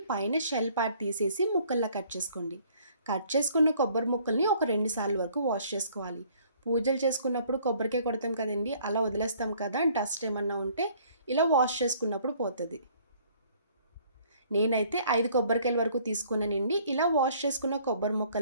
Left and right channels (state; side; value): inverted; both; correlation -0.59